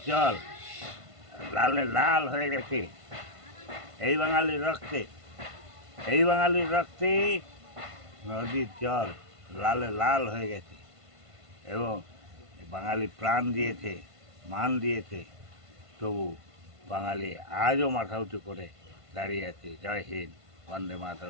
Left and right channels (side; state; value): left; late; 1.5 ms